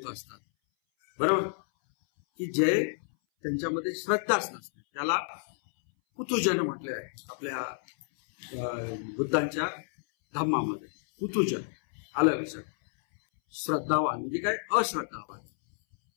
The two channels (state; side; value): silent; right; 58 dB below the other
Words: असतात, बरोबर, की जे त्यांच्यामध्ये श्रद्धाच नसते. त्याला पुतुजन म्हटले आहे आपल्या बुद्धांच्या धम्मामध्ये. पुतुजन आलं लक्षात? श्रद्धावान म्हणजे काय? अश्रद्धावान.